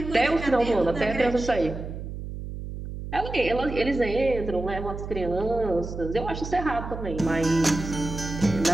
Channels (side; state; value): right; noise; hum, 8 dB below the sound